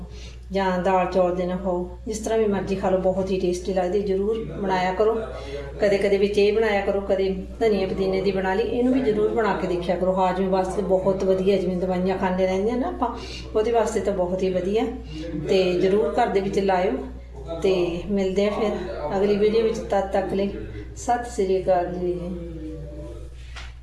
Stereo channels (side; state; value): both; identical; correlation 1.00